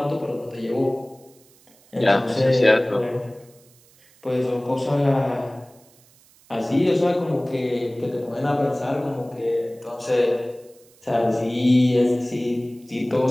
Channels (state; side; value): noise; right; hiss, 29 dB below the sound